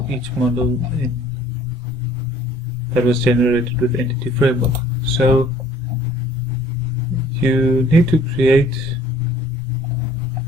each model that was generated with Entity Framework. So you need to create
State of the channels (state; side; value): normal; both; correlation 0.56